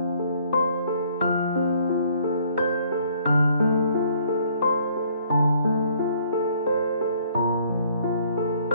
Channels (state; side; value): inverted; both; correlation -0.63